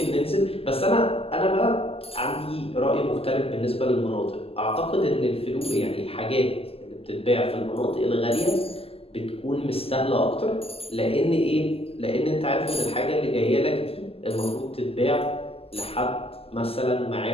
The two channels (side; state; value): right; late; 0.28 ms